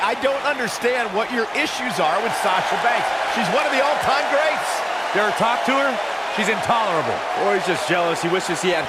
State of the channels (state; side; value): identical; both; correlation 1.00